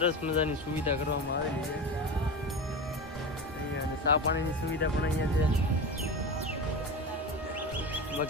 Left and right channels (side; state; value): both; normal; correlation 0.25